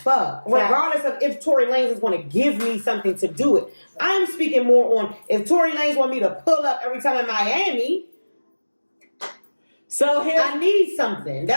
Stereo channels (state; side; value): inverted; both; correlation -1.00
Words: Regardless of if Tory Lanez is going to give me something to do it. I'm speaking more on if Tory Lanez want me to pull up every time in Miami. So here, I need something.